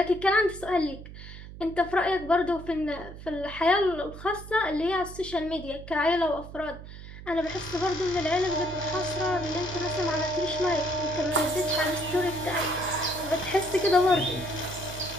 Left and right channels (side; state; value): right; noise; hum, 14 dB below the sound